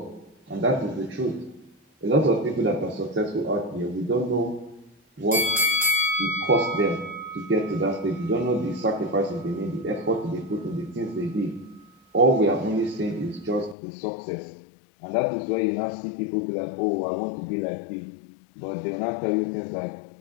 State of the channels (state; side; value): drops out; right; at 13.8 s